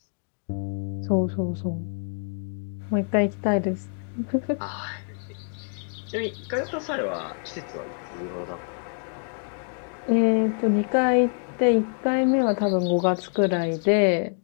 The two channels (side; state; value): right; silent; 56 dB below the other